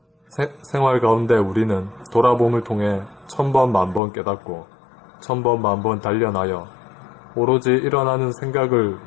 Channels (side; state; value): right; drops out; at 4.0 s